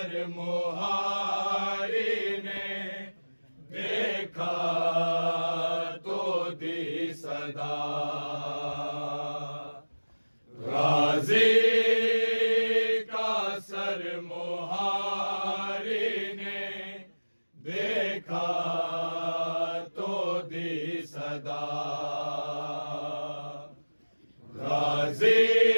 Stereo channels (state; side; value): inverted; both; correlation -1.00